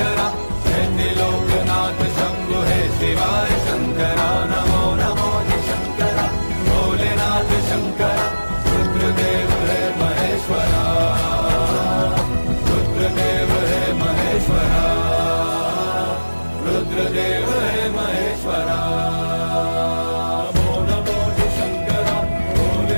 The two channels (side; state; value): both; inverted; correlation -1.00